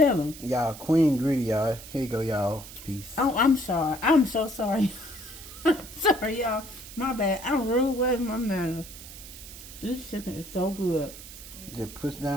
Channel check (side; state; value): right; noise; hiss, 15 dB below the sound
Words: them. Y'all, Queen greedy, y'all. Here you go, y'all. Peace. Oh, I'm sorry. I'm so sorry. Sorry, y'all. My bad. I'm rude with my manners. This chicken is so good. Just push